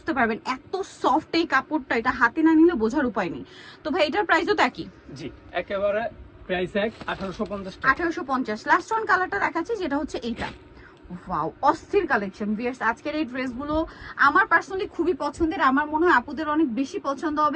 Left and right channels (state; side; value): identical; both; correlation 1.00